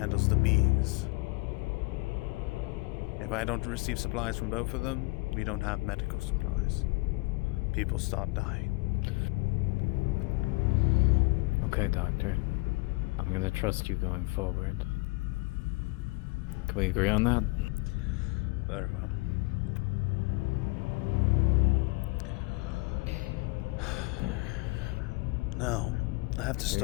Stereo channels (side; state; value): right; quieter; 26.2 dB